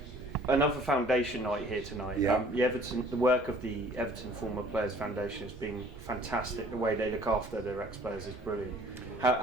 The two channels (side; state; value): both; normal; correlation 0.54